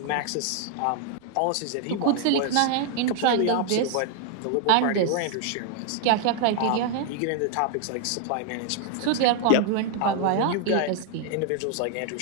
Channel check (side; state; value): both; different; correlation 0.00